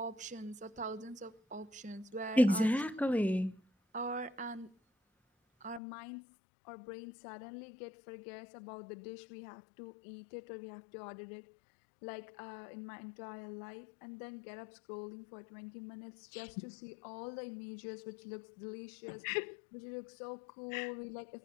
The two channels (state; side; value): drops out; right; at 5.8 s